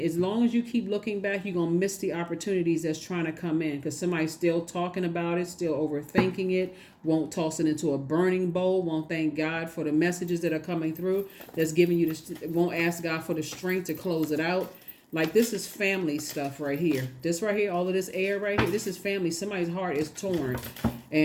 As long as you keep looking back, you're going to miss the opportunities that's trying to come in, because somebody's still talking about it, still overthinking it, won't toss it into a burning bowl, won't thank God for the messages that are coming through, that's giving you won't ask God for the strength to close it out. Like, this is family stuff right here. This right here, all of this air right here, this is family. Somebody's heart is torn.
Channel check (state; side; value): identical; both; correlation 1.00